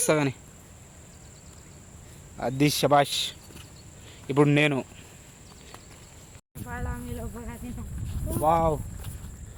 కానీ. అది శబాష్. ఇప్పుడు నేను వావ్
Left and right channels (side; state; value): both; identical; correlation 1.00